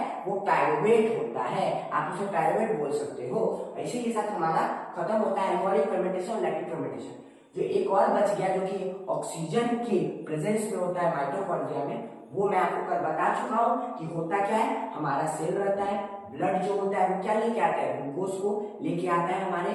वो पायरुवेट होता है, आप उसे पायरुवेट बोल सकते हो। इसी के साथ हमारा खत्म होता है एल्कोहलिक फर्मेंटेशन और लैक्टिक फर्मेंटेशन। जो एक और बच गया जो कि ऑक्सीजन के प्रेजेंस में होता है माइटोकॉन्ड्रिया में, वो मैं आपको कल बता चुका हूँ कि होता क्या है। हमारा सेल रहता है, ब्लड जो होता है वो क्या लेके आता है, ग्लूकोज को लेके आता है हमारे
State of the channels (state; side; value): identical; both; correlation 1.00